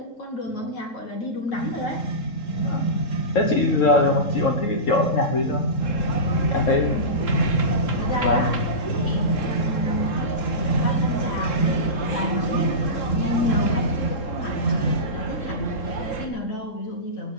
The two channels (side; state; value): right; late; 3.7 ms